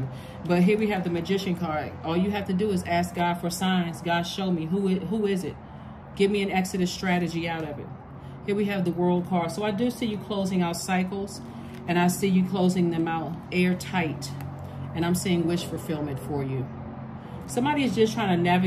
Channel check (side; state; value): both; identical; correlation 1.00